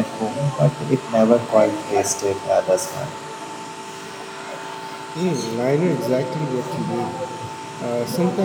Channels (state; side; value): identical; both; correlation 1.00